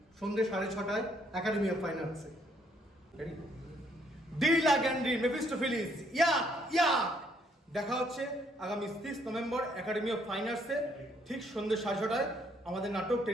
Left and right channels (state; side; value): normal; both; correlation 0.68